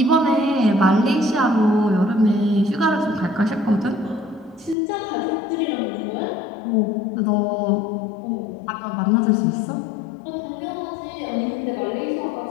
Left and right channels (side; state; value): right; drops out; at 4.8 s